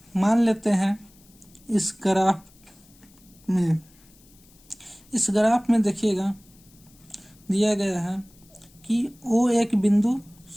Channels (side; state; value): left; noise; hiss, 28 dB below the sound